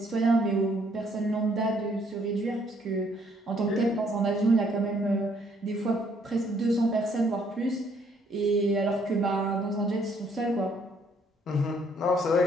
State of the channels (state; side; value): normal; both; correlation 0.67